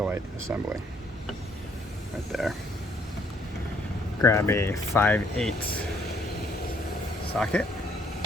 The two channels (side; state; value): both; normal; correlation 0.66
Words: assembly. Right there. Grab a 5/8 socket.